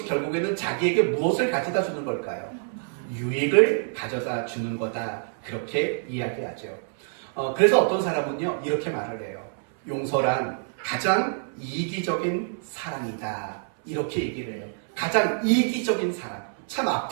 결국에는 자기에게 무엇을 가져다 주는 걸까요? 유익을 가져다 주는 거다. 그렇게 이야기하죠. 그래서 어떤 사람은요 이렇게 말을 해요. 용서란 가장 이기적인 사랑이다. 이렇게 얘기를 해요. 가장 이기적인 사랑. 참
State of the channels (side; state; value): left; silent; 59 dB below the other